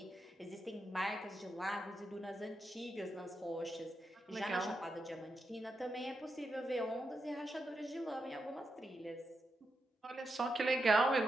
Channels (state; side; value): normal; both; correlation 0.86